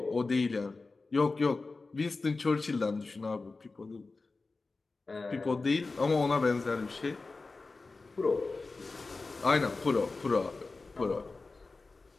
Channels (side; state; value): right; quieter; 3.7 dB